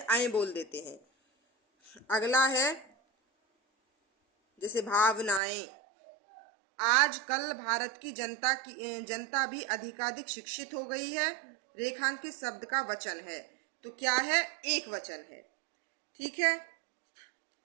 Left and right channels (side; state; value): left; drops out; at 5.4 s